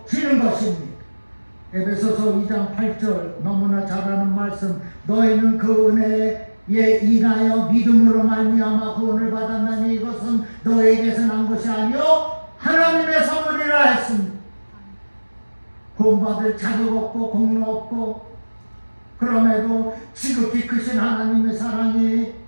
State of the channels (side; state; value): both; inverted; correlation -1.00